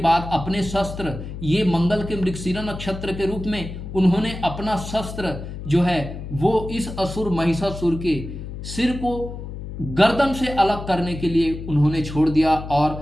अपने शस्त्र, ये मंगल के मृगशिरा नक्षत्र के रूप में उन्होंने अपना शस्त्र जो है वो इस असुर महिषासुर के सिर को गर्दन से अलग करने के लिए उन्होंने छोड़ दिया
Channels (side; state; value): left; noise; hum, 9 dB below the sound